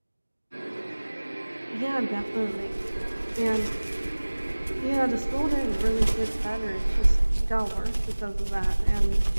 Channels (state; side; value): inverted; both; correlation -1.00